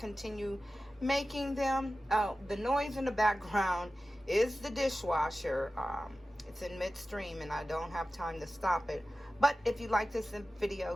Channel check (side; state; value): both; normal; correlation 0.95